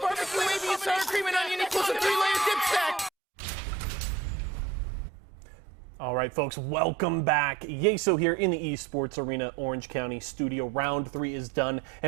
wavy, and sour cream and onion equals a 3-layer dip stack. All right, folks, welcome back. Yeso here in the Esports Arena, Orange County studio. Round 3 is done,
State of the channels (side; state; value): left; drops out; at 3.1 s